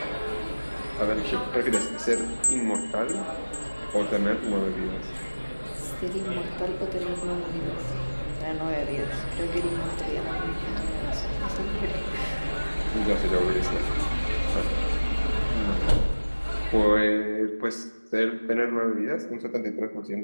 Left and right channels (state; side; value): inverted; both; correlation -1.00